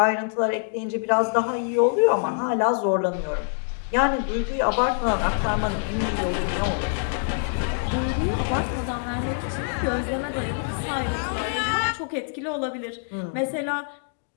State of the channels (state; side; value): silent; right; digital silence